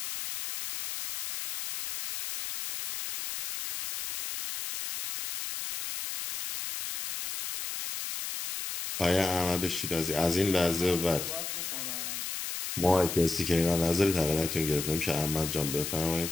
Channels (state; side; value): noise; left; hiss, 5 dB below the sound